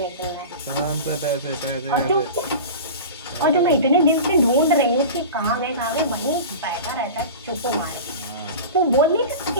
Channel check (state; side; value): inverted; both; correlation -0.32